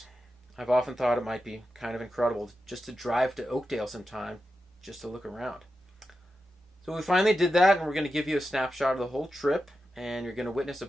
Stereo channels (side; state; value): both; normal; correlation 0.90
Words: I've often thought it might be kind of incredible just to drive to Oakdale sometime, just to look around. So we finally did that, and we're going to give you a snapshot of the whole trip, and you're going to witness a